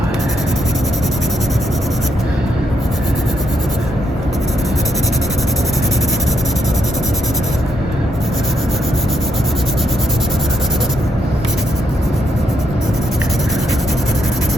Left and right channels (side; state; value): both; normal; correlation 0.78